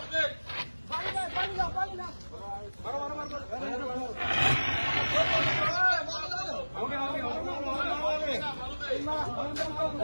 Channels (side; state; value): both; inverted; correlation -1.00